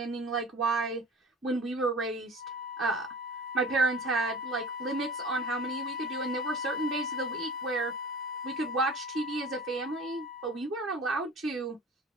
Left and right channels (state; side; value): normal; both; correlation 0.39